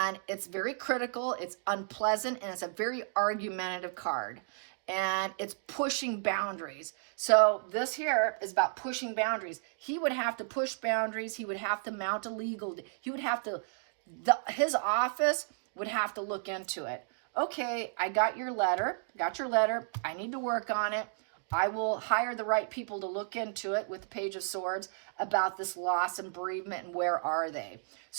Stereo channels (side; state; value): left; silent; digital silence